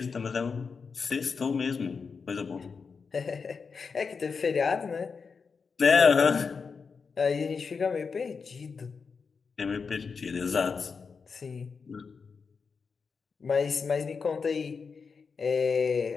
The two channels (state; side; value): quieter; right; 5.3 dB